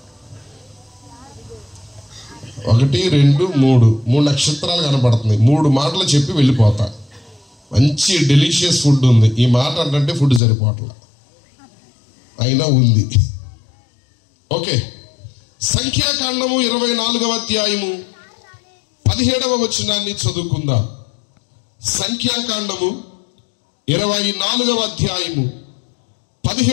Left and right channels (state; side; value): drops out; right; at 10.4 s